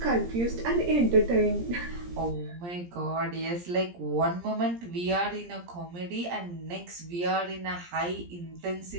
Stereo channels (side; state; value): left; late; 17 ms